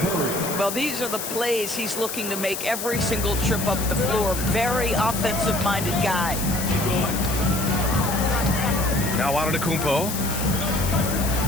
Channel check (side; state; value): left; noise; hiss, 6 dB below the sound